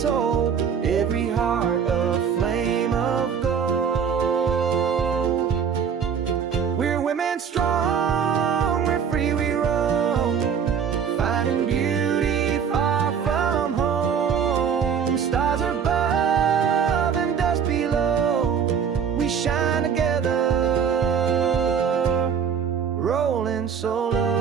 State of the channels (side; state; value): left; quieter; 7.2 dB